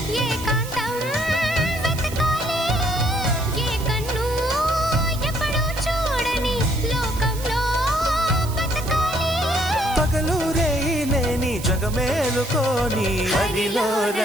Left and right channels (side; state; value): right; noise; hiss, 13 dB below the sound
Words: ఏకాంతం వెతకాలి ఏ కన్ను ఎప్పుడూ చూడని లోకంలో బతకాలి పగలు రేయి లేని జగమేలుకోని హరిలో